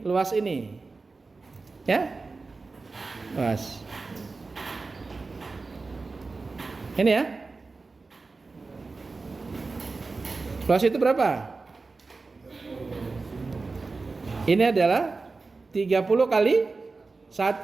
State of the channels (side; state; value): left; quieter; 3.9 dB